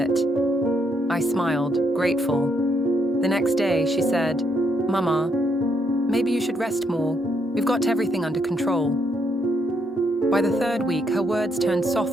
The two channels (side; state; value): both; normal; correlation 0.75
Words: I smiled, grateful. The next day, she said, "Mama, maybe you should rest more. We've got everything under control." By the third week, her words turned